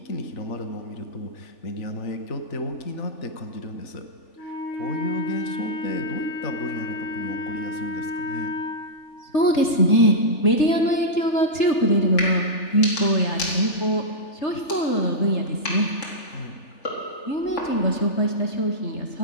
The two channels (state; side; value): late; right; 3.4 ms